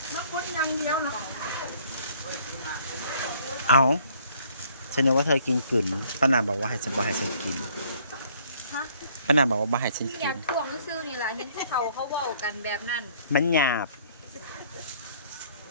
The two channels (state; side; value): inverted; both; correlation -0.60